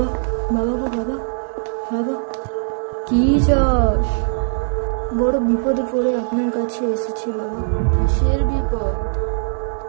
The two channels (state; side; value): silent; left; 66 dB below the other